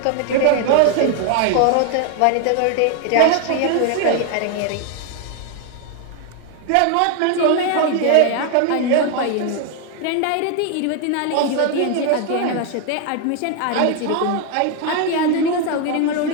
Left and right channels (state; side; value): different; both; correlation 0.01